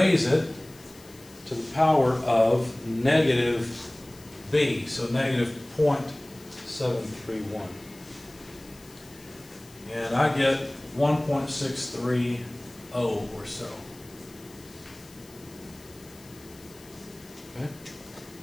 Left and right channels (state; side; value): noise; left; hiss, 23 dB below the sound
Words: it to the power of negative B, so negative 0.731. And I get 1.630 or so. Okay.